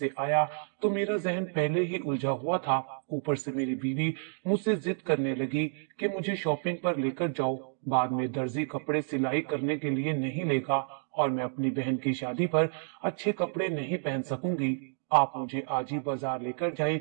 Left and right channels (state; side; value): silent; left; 58 dB below the other